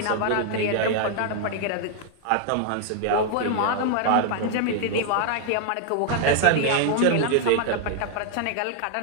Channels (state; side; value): different; both; correlation 0.00